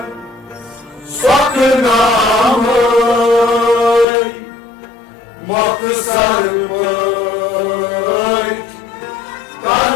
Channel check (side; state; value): right; drops out; at 4.0 s